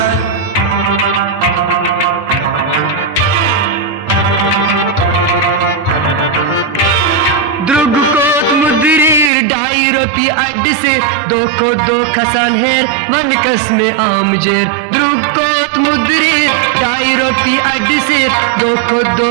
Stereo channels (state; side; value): drops out; left; at 9.3 s